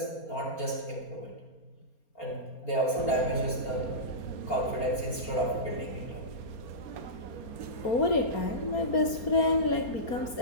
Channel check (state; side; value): late; right; 4.3 ms